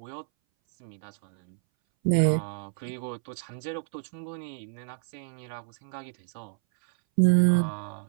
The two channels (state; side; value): silent; left; 59 dB below the other